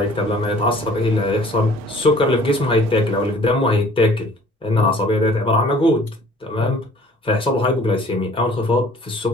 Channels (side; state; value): both; normal; correlation 0.53